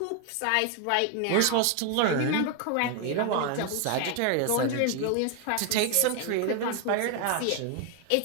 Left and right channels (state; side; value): different; both; correlation 0.01